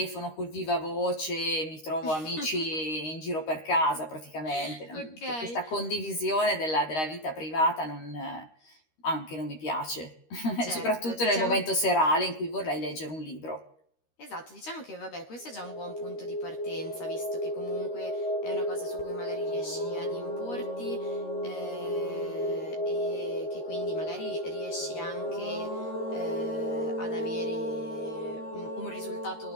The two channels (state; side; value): late; right; 13 ms